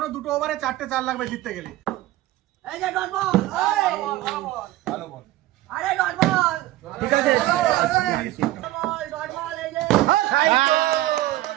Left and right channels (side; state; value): left; quieter; 16.0 dB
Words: দুটো ওভারে 4টে 4 লাগবে জিততে গেলে। এই যে ডট বল, ভালো বল। আরে ডট বল, ঠিক আছে। ডট বল, এই যে